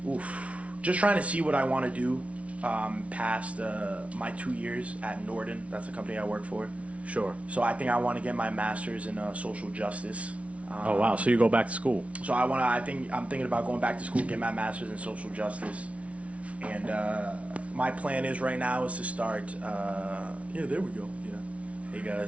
see what I want to do past my 2 years at Norden. That's the company I work for. Sure. So I think I want to get my master's in social justice. Oh wow! So you go back to school? So I'm thinking about going back to school, get my master's in social justice, and my plan is right now is to start. Yeah, there we go. Yeah, hey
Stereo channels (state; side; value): late; left; 0.064 ms